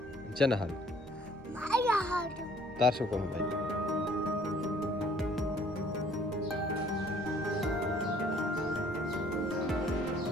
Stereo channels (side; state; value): both; normal; correlation 0.58